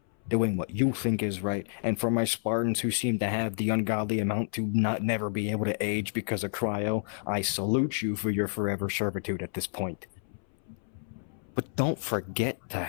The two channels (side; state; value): right; silent; 58 dB below the other